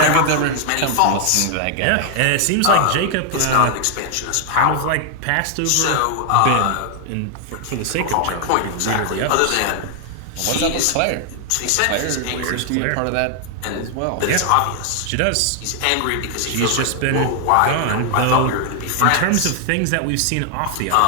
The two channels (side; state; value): both; different; correlation 0.00